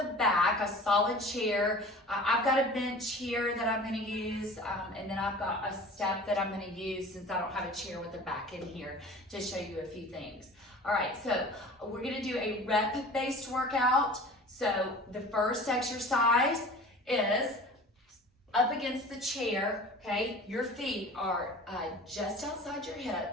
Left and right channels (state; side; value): normal; both; correlation 0.41